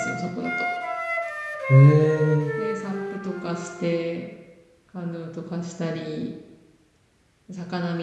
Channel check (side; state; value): both; identical; correlation 1.00